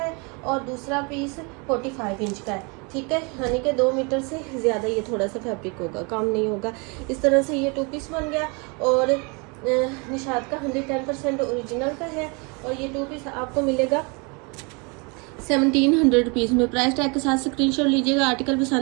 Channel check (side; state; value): left; quieter; 31.3 dB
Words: और दूसरा पीस 45 इंच का है, ठीक है। यानी कि 2 मीटर से ज़्यादा ये थोड़ा सा फैब्रिक होगा, काम नहीं होगा। इस तरह से ये 2 पीस बन गया और निशात का 110% ओरिजिनल का है और ये 2 पीस आपको मिलेगा 1700 रुपीज़ में। प्राइस टैग के साथ स्क्रीनशॉट लीजिएगा। आर्टिकल